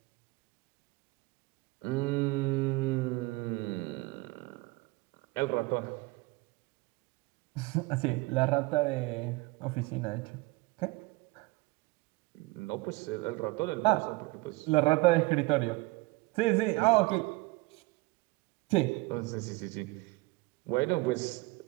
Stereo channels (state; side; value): quieter; left; 22.8 dB